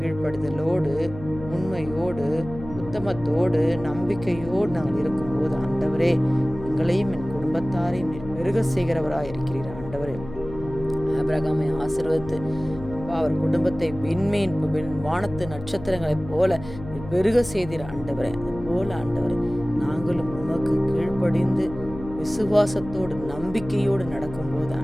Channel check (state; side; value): noise; left; hum, 13 dB below the sound